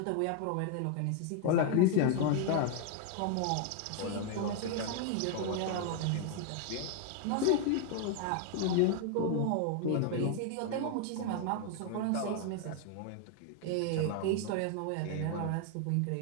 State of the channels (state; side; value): different; both; correlation 0.00